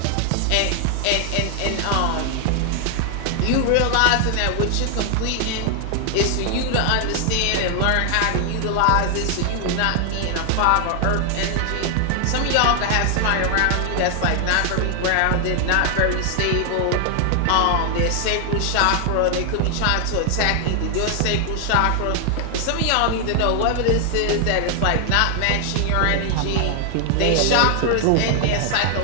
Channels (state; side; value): different; both; correlation 0.00